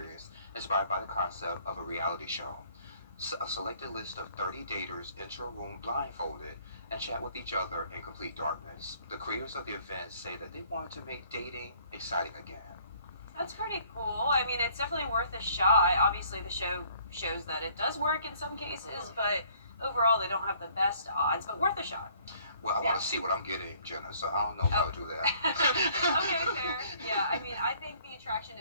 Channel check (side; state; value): both; inverted; correlation -0.60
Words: inspired by the concept of a reality show. A selected list of 30 daters enter a room blindfolded and chat with each other in complete darkness. The creators of the event say that they want to make dating exciting again. That's pretty cool. I mean, it's definitely worth a shot. Obviously, the show shows that it does work in some cases, but overall, they don't have the best odds, but worth a shot. Well, I want to see what I'm getting, Jenna, so I don't know if I'll do that. Okay, fair. Yeah, I mean, I think the attraction